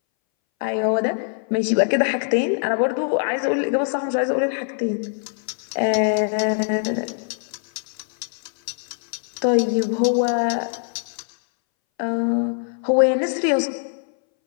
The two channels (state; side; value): silent; right; 62 dB below the other